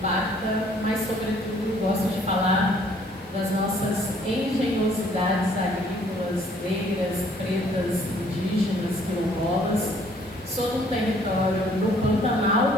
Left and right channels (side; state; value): both; normal; correlation 0.60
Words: mas sobretudo gosto de falar das nossas engenhosidades agrícolas, negras, pretas, indígenas, quilombolas. Sou do território do Pantanal